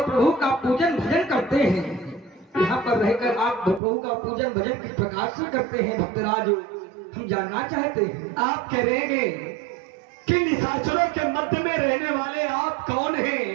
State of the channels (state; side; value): drops out; left; at 3.8 s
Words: प्रभु का पूजन भजन करते हैं। यहाँ पर रहकर आप प्रभु का पूजन भजन किस प्रकार से करते हैं भक्तराज, हम जानना चाहते हैं। आप कह रहे हैं कि निशाचरों के मध्य में रहने वाले आप कौन